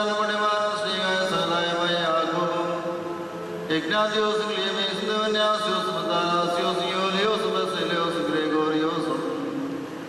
പുണ്യമാനും ശ്രീകായ സഹലായമായ യാക്കോബും ഇഗ്നാത്യോസും ക്ലിയമേസും ദേവന്യാസ്യോസും മത്താനാസ്യോസും യോലിയോസും ബസേലിയോസും ഗ്രെഗോറിയോസും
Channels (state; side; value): identical; both; correlation 1.00